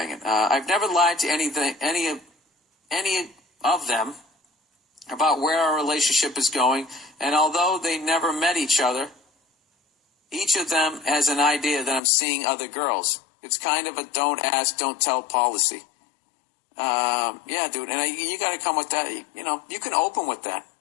I've never lied to any of them about where our relationship is going, and although they never met each other, each of them has an idea that I'm seeing other girls. It's kind of a don't ask, don't tell policy. Yeah, dude, and you got to come with that. You can open with that.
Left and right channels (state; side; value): drops out; right; at 12.0 s